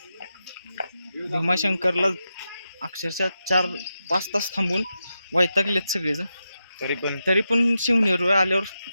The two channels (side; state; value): both; inverted; correlation -0.88